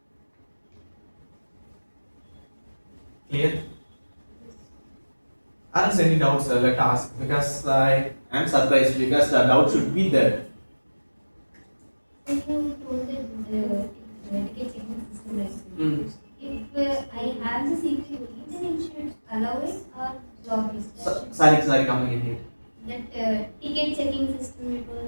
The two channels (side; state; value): both; inverted; correlation -1.00